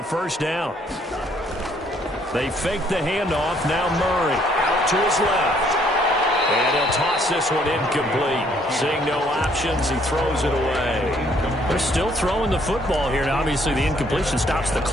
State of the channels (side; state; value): both; normal; correlation 0.65